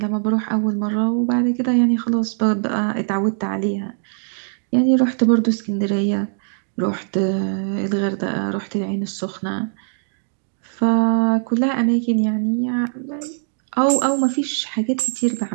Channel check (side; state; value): left; silent; digital silence